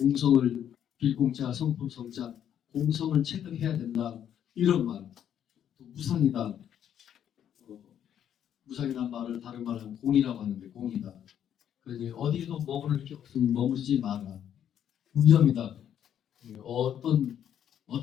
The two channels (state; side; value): quieter; right; 9.7 dB